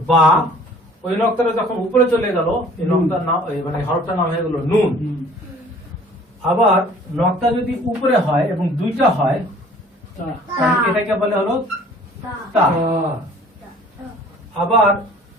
বা। ওই নক্তাটা যখন উপরে চলে গেল, এই নক্তার নাম মানে হরফটার নাম হয়ে গেল নুন। আবার নক্তা যদি উপরে হয় এবং 2টা হয়, তাহলে এটাকে বলে হলো তা। আবার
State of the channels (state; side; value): normal; both; correlation 0.52